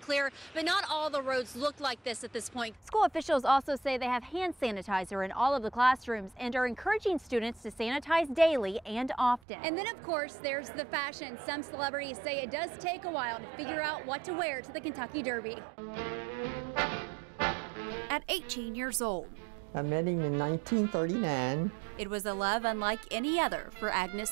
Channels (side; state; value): left; drops out; at 9.4 s